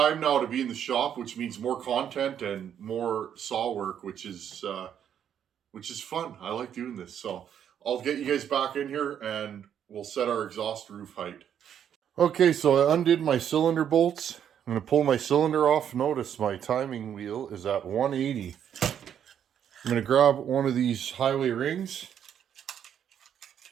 now to be in the shop, which means more content and more saw work, which is fun. I like doing this. So I'll get you guys back in here and we'll set our exhaust roof height. Okay, so I undid my cylinder bolts. I'm going to pull my cylinder off. Notice my timing wheel is at 180. I'm going to grab one of these highway rings.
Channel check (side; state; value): left; quieter; 9.1 dB